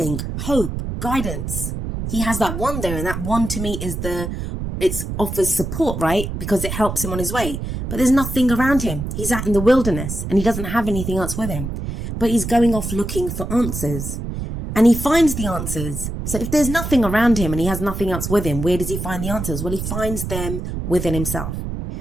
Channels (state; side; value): noise; right; rumble, 5 dB below the sound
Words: hope, guidance. He has that wand there, and that wand to me is it offers support, right? Because it helps him on his way. But there's nothing around him. He's out in the wilderness and he doesn't have anything else with him. But he's going off looking for answers. And he finds the answers. So if there's nothing around him and he has nothing else with him, where does he find the answers? Well, he finds them within himself.